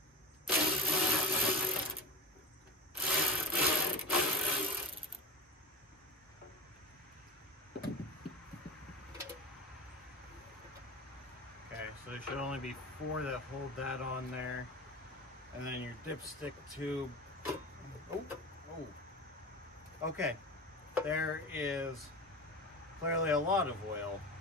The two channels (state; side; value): normal; both; correlation 0.30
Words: So there should only be 4 that hold that on there. And then your dipstick tube. Oh, oh. Okay, there is clearly a lot of oil